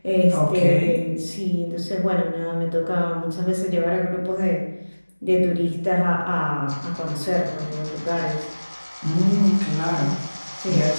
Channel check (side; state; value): both; inverted; correlation -1.00